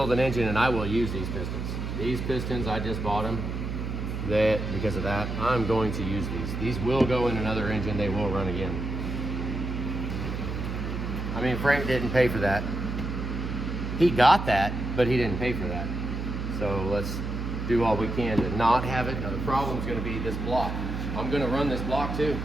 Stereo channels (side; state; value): right; noise; hum, 4 dB below the sound